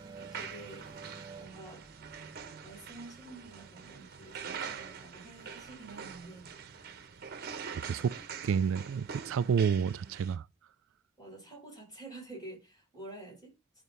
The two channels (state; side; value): quieter; left; 6.4 dB